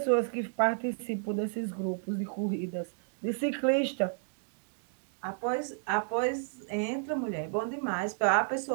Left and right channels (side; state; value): left; silent; digital silence